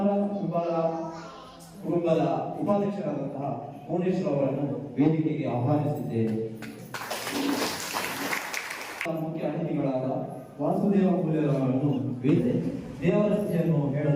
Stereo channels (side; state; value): both; identical; correlation 1.00